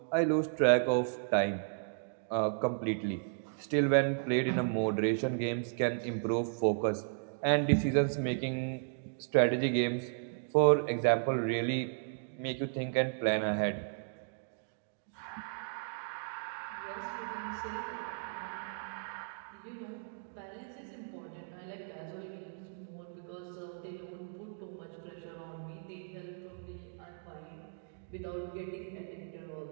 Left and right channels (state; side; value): silent; left; digital silence